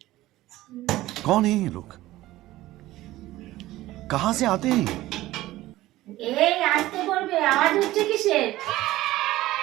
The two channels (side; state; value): left; quieter; 16.5 dB